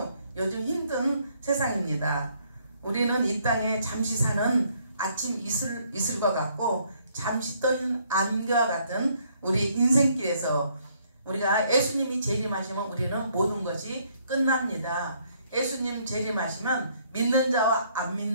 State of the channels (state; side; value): inverted; both; correlation -0.67